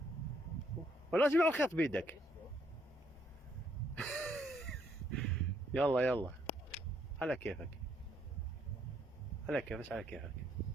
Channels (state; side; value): normal; both; correlation 0.71